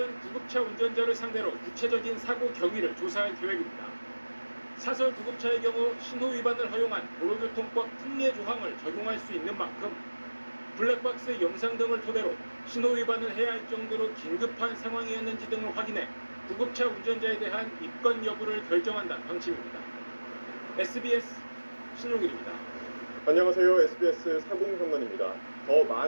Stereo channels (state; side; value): inverted; both; correlation -1.00